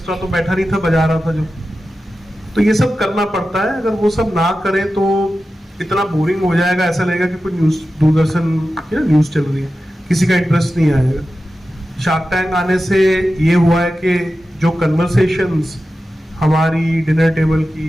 तो बैठा नहीं था, बजा रहा था जो, तो ये सब करना पड़ता है। अगर वो सब ना करें तो इतना बोरिंग हो जाएगा, ऐसा लगेगा कि कोई न्यूज, दूरदर्शन न्यूज चल रही है, किसी का इंटरेस्ट नहीं आएगा। शार्क टैंक आने से ये हुआ है कि जो कन्वर्सेशंस हमारी डिनर टेबल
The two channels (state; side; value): normal; both; correlation 0.93